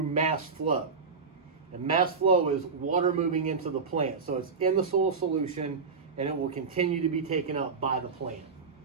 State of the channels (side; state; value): left; quieter; 5.1 dB